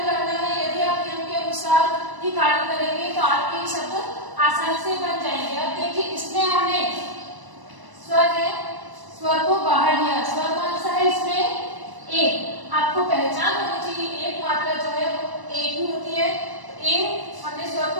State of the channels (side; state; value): left; late; 1.0 ms